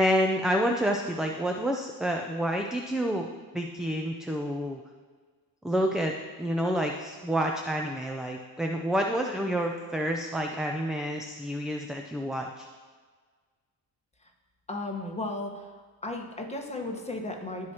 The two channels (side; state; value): both; normal; correlation 0.69